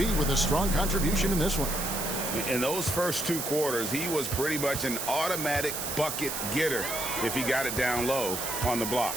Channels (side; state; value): right; noise; hiss, 4 dB below the sound